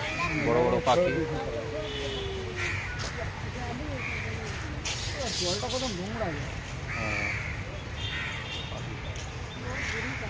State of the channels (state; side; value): identical; both; correlation 1.00